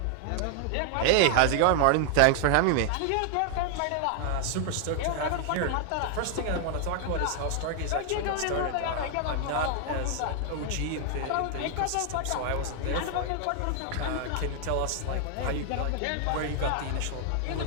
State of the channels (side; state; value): both; different; correlation 0.00